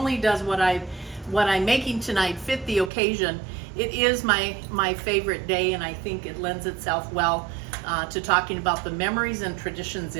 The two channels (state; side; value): drops out; left; at 2.9 s